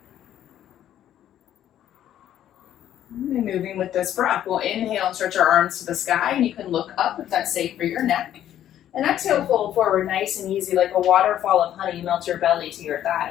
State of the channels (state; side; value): quieter; right; 11.3 dB